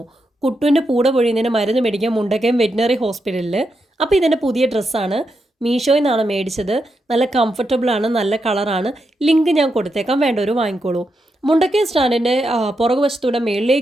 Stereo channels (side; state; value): both; normal; correlation 0.84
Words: കുട്ടുവിൻ്റെ പൂട പൊഴിയുന്നതിന് മരുന്ന് മേടിക്കാൻ മുണ്ടക്കയം വെറ്റിനറി ഹോസ്പിറ്റലിൽ. അപ്പോൾ ഇതെൻ്റെ പുതിയ ഡ്രസ്സാണ്. മീഷോയിൽ നിന്നാണ് മേടിച്ചത്. നല്ല കംഫർട്ടബിളാണ്, നല്ല കളറാണ്. ലിങ്ക് ഞാൻ കൊടുത്തേക്കാം, വേണ്ടവർ വാങ്ങിക്കോളൂ. മുണ്ടക്കയം സ്റ്റാൻഡിൻ്റെ പുറകുവശത്തൂടെ